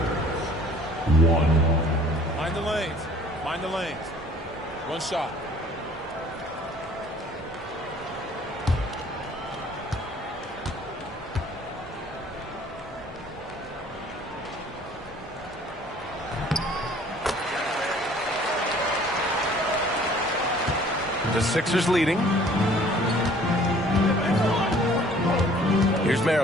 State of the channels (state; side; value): normal; both; correlation 0.54